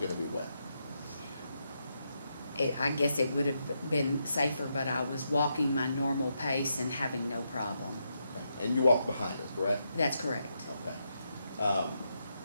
to be wet? I guess it would have been safer, but I was walking my normal pace and having no problem. Okay. And you walked behind her, correct? That's correct. Okay.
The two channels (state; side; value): inverted; both; correlation -0.82